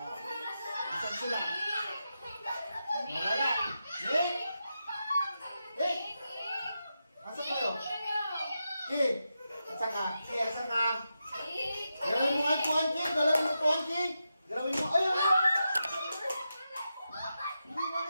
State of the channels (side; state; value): both; inverted; correlation -0.88